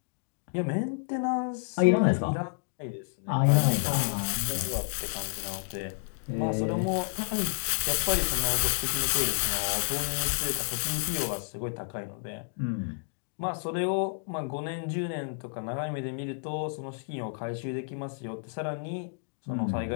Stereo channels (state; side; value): silent; right; digital silence